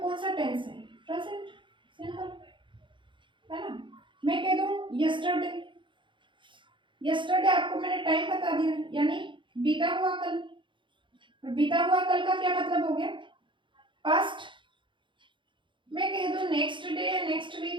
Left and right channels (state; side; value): late; left; 0.24 ms